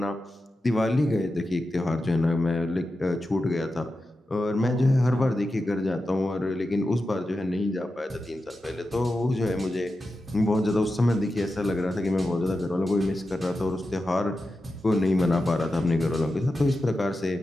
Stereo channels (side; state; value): both; normal; correlation 0.91